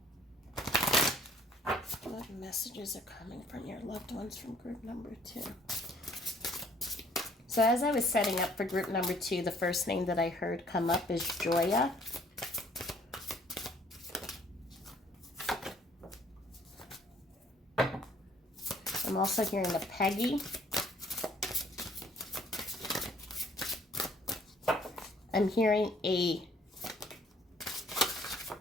What messages are coming from your loved ones from group number 2? So as I was setting up for group number 2, the first name that I heard come up is Joya. I'm also hearing a Peggy. I'm hearing a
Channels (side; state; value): both; normal; correlation 0.60